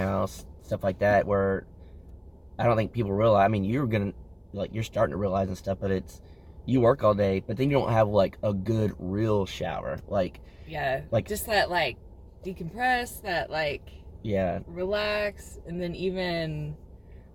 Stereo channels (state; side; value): identical; both; correlation 1.00